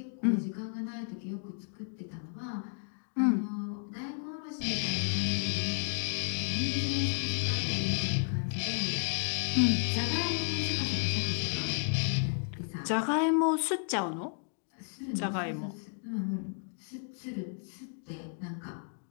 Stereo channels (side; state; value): right; silent; 56 dB below the other